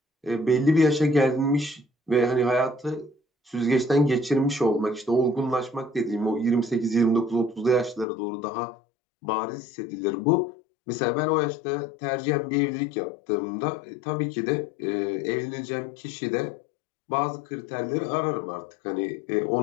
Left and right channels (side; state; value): right; drops out; at 8.1 s